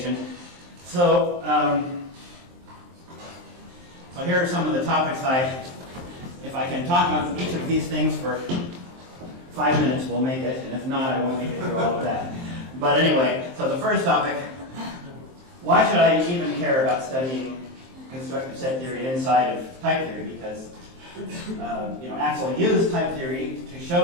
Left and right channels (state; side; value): late; left; 23 ms